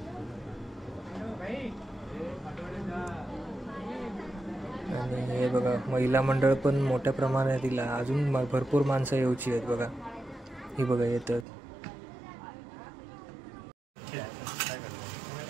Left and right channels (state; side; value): drops out; left; at 11.5 s